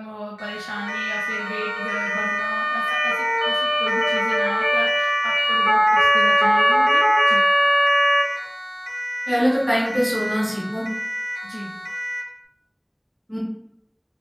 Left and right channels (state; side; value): identical; both; correlation 1.00